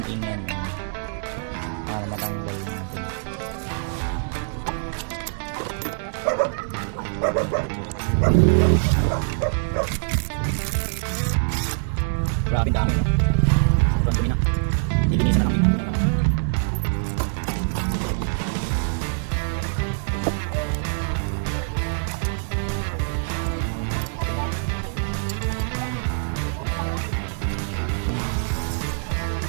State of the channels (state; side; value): silent; left; digital silence